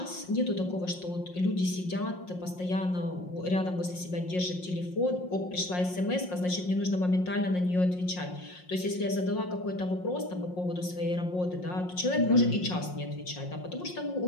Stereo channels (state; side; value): late; right; 5.6 ms